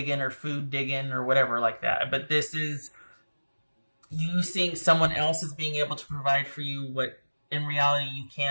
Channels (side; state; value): both; inverted; correlation -1.00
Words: or food digging or whatever like that, but this is you seeing someone else as being able to provide for you what in reality you